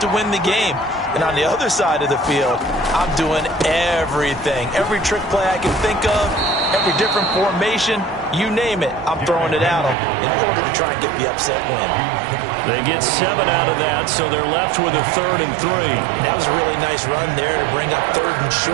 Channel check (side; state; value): left; drops out; at 10.0 s